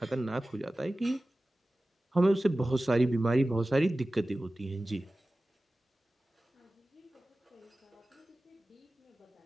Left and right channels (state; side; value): normal; both; correlation 0.96